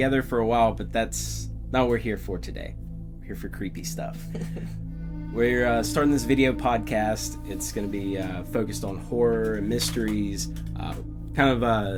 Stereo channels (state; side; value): identical; both; correlation 1.00